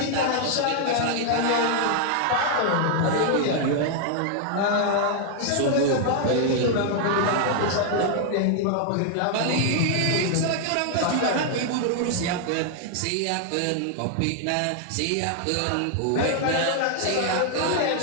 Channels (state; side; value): different; both; correlation 0.00